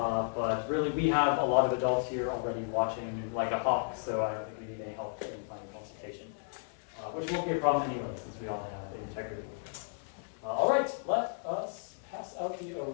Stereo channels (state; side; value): silent; right; digital silence